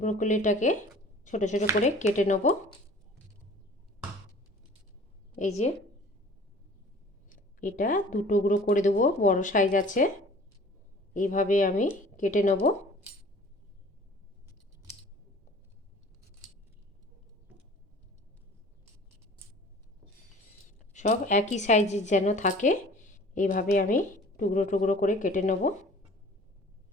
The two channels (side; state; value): both; normal; correlation 0.47